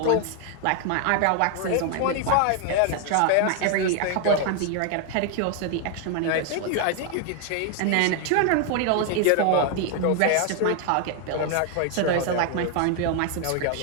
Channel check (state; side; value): different; both; correlation 0.01